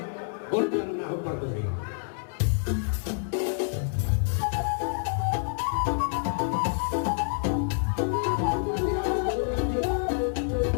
gorjang nahu partosi.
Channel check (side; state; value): right; silent; digital silence